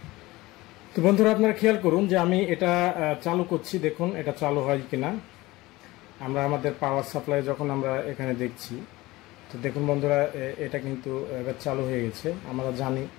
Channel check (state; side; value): quieter; right; 19.7 dB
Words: তো বন্ধুরা, আপনারা খেয়াল করুন যে আমি এটা চালু করছি। দেখুন এটা চালু হয় কিনা। আমরা আমাদের পাওয়ার সাপ্লাই যখন আমরা এখানে দেখছি, তো দেখুন বন্ধুরা, এটা কিন্তু এবার চালু হয়ে গেছে। আমরা জানি